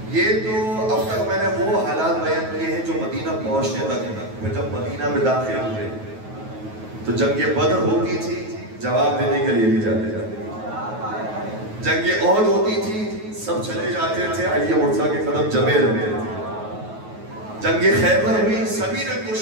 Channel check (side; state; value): left; late; 9.3 ms